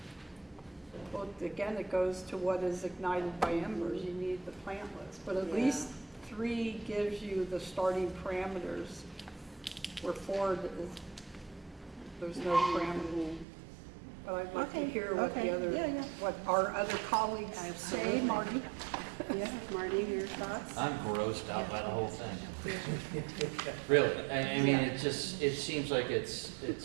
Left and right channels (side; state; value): left; drops out; at 13.5 s